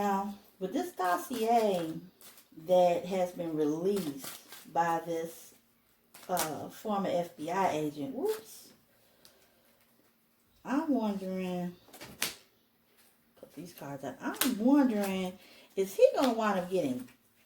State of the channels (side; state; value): both; identical; correlation 1.00